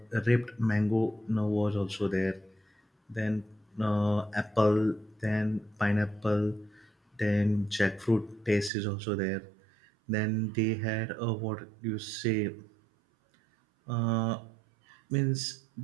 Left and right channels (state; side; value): drops out; left; at 8.7 s